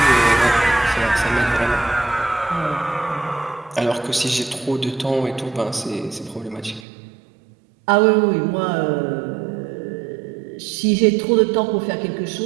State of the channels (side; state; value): left; drops out; at 6.8 s